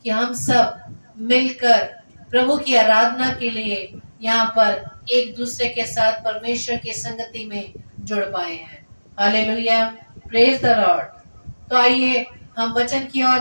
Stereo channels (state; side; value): inverted; both; correlation -1.00